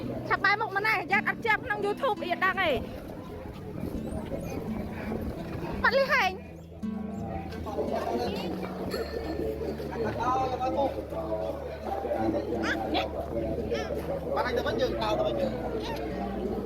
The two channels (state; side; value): identical; both; correlation 1.00